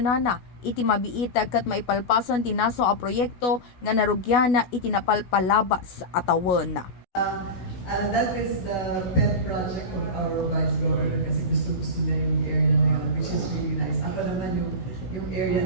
iti mabiita kat maipalpason ti naso a proyekto nga narugyana iti napalpalabas atawon. That is the pet project of our Vice Governor kasi gusto niya yung area na yun, which is really nice. Ako naman yung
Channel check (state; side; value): late; right; 16 ms